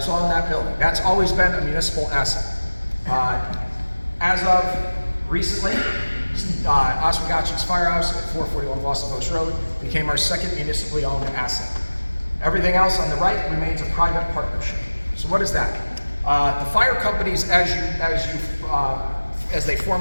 all in that building. That's always been a municipal asset. As of recently, Oswegatchie's Firehouse at 441 Boston Post Road became our second municipally owned asset. Everything else on the right remains a private partnership. So what is that? The fire companies, as they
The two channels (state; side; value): inverted; both; correlation -1.00